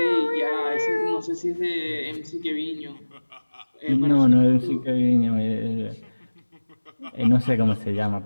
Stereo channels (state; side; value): inverted; both; correlation -1.00